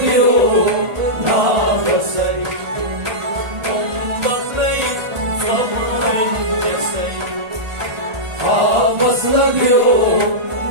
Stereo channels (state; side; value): late; left; 1.5 ms